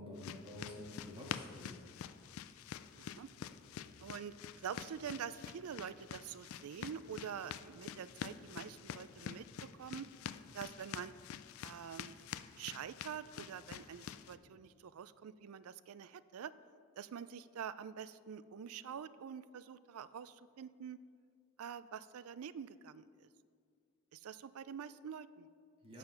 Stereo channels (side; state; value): both; normal; correlation 0.02